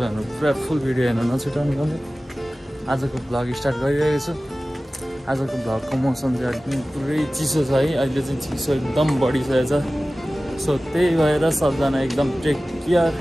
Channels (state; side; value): normal; both; correlation 0.97